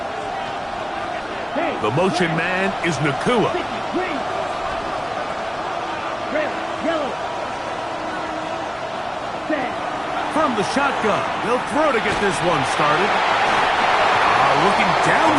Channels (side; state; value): both; identical; correlation 1.00